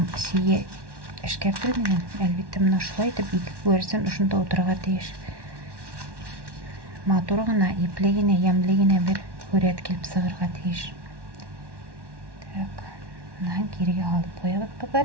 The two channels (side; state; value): left; late; 1.1 ms